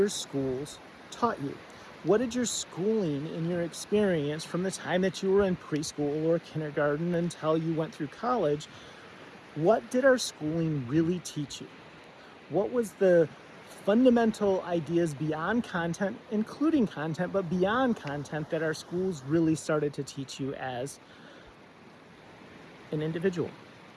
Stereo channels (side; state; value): both; identical; correlation 1.00